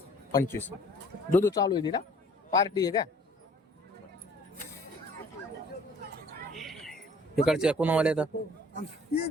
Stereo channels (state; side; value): normal; both; correlation 0.54